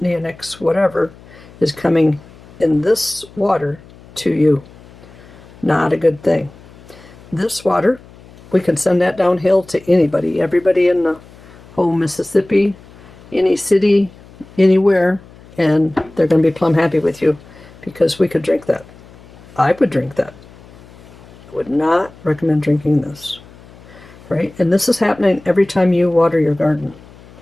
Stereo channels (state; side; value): noise; left; hum, 22 dB below the sound